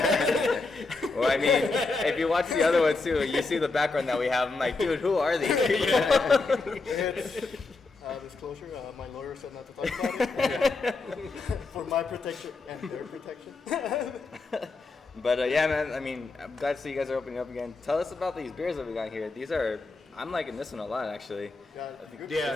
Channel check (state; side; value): quieter; right; 3.7 dB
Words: I mean, if you watch the other one too, you see the background that we have. I'm like, dude, who are these? It's disclosure. My lawyer said not to talk about it for my protection and their protection. But yeah, man. I mean, I'm glad to see you guys are opening up again. Tell us about these beers that we got here. I'm liking this one a lot, actually.